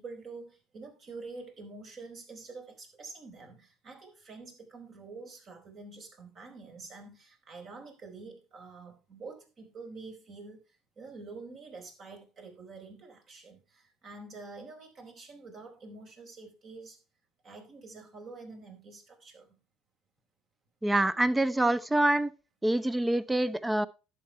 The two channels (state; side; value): normal; both; correlation 0.95